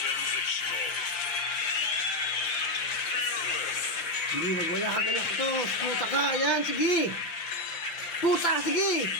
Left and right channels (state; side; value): late; right; 5.8 ms